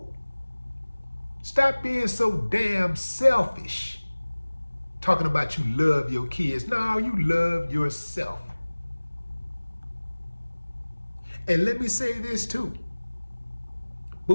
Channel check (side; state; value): both; inverted; correlation -1.00